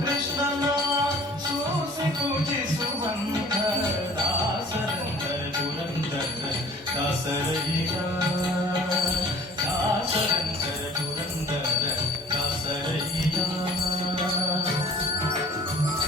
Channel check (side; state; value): both; normal; correlation 0.48